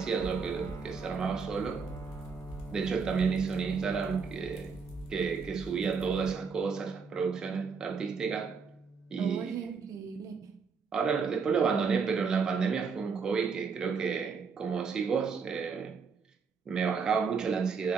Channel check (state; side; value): quieter; left; 5.5 dB